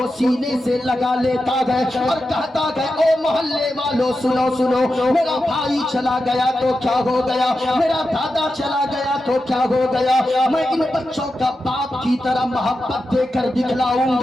سینے سے لگا لیتا گیا اور کہتا گیا او محلے والوں سنو سنو, میرا بھائی چلا گیا تو کیا ہو گیا, میرا دادا چلا گیا تو کیا ہو گیا, میں ان بچوں کا باپ کی طرح محبت دے کر دکھلاؤں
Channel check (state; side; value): normal; both; correlation 0.90